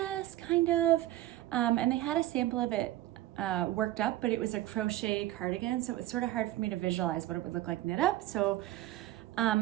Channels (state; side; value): quieter; left; 15.2 dB